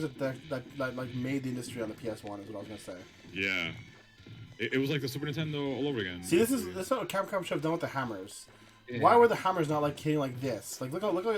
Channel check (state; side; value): identical; both; correlation 1.00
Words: that like made the industry on the PS1. Is what I was gonna say. Yeah, it was like the Super Nintendo all over again. See, this is what Capcom should have done with the hammers. yeah. Why were the hammers not like hitting like this? Like look